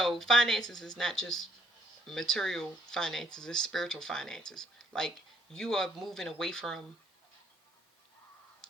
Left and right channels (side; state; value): both; normal; correlation 0.68